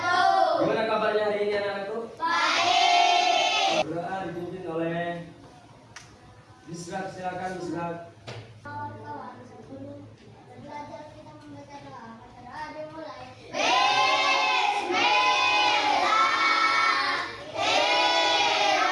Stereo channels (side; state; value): both; identical; correlation 1.00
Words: Gimana kabarnya hari ini anak-anakku? Baik. Doa dipimpin oleh Bisrak, silakan Bisrak. Kawan-kawan, sebelum belajar kita membaca doa. Baca doa dimulai.